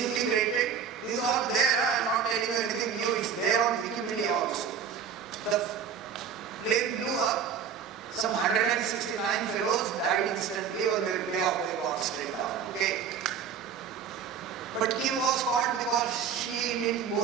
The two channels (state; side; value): quieter; left; 7.3 dB